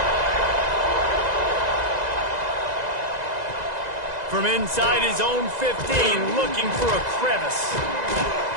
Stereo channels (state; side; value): late; left; 2.0 ms